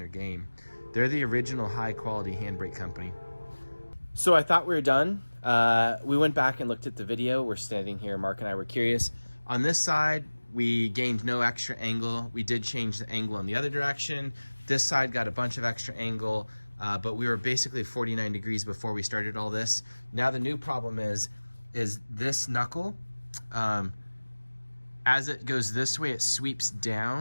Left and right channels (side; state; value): both; inverted; correlation -1.00